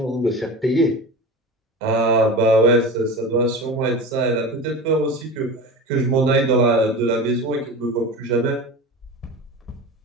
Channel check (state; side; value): normal; both; correlation 0.30